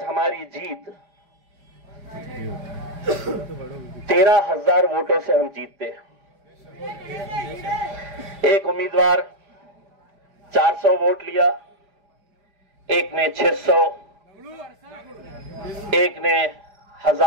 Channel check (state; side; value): late; left; 5.0 ms